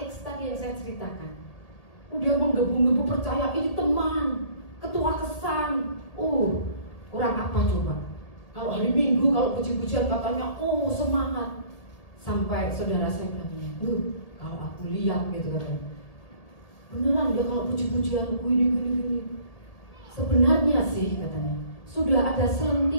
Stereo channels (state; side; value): late; right; 1.8 ms